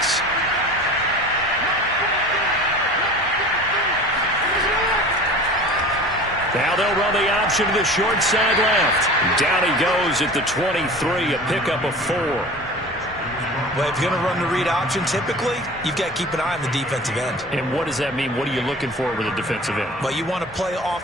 Now they'll run the option to the short side left. Down he goes at the 23, a pickup of 4. Well, if you're going to run the read option, typically, you've got to keep an eye on the defensive end. And what does that mean? What are you looking for with a defensive end? Well, you want to play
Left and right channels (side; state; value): both; normal; correlation 0.39